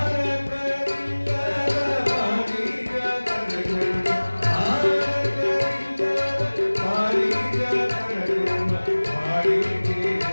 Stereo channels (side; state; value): both; inverted; correlation -1.00